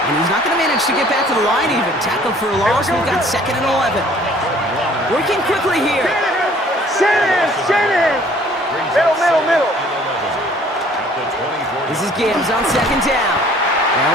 And he's not going to manage to get back to the line even. Tackled for a loss. We've got 2nd and 11. Working quickly here. Shanahan. Middle. This is Gibbs on 2nd down.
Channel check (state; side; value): normal; both; correlation 0.55